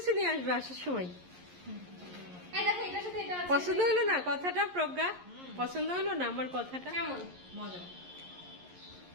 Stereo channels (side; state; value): left; late; 11 ms